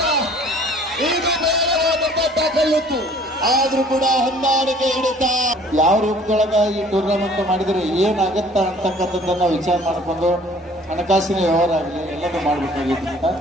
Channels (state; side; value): normal; both; correlation 0.53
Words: ಕಲ್ಲಿತ್ತು, ಆದ್ರೂ ಕೂಡ ಹೊಂದಾಣಿಕೆ ಹಿಡಿತ. ಯಾವ ರೂಪದೊಳಗ ಈ ಟೂರ್ನಮೆಂಟ್ ಮಾಡಿದ್ರೆ ಏನಾಗತ್ತ ಅಂತಕ್ಕಂಥದ್ದನ್ನ ವಿಚಾರ ಮಾಡಿಕೊಂಡು ಹಣಕಾಸಿನ ವ್ಯವಹಾರ ಆಗಲಿ ಎಲ್ಲದೂ ಮಾಡ್ಬೇಕಾಗಿತ್ತು.